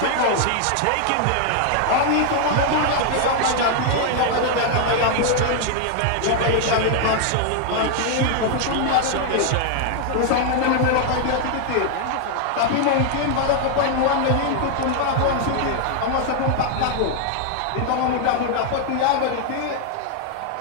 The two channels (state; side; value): different; both; correlation 0.00